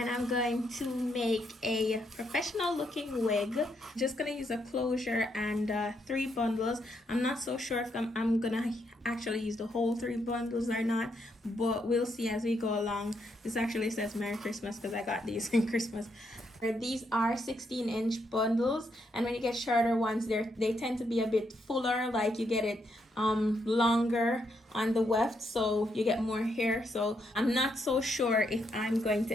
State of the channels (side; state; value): both; normal; correlation 0.77